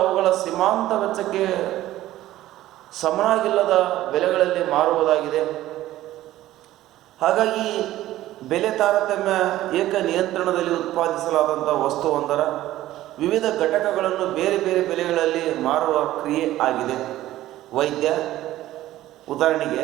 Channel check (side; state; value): left; quieter; 14.8 dB